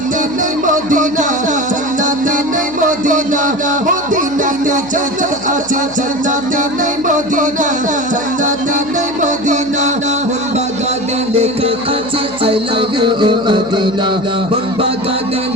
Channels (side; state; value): right; noise; hum, 19 dB below the sound